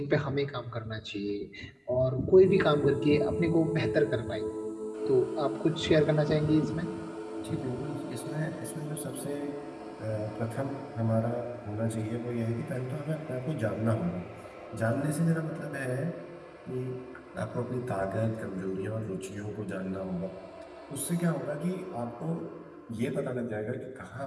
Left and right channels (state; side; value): identical; both; correlation 1.00